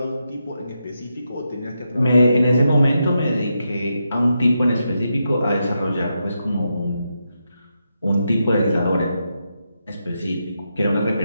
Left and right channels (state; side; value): inverted; both; correlation -0.85